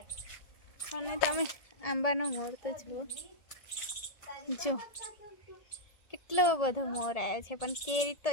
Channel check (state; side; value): late; right; 1.7 ms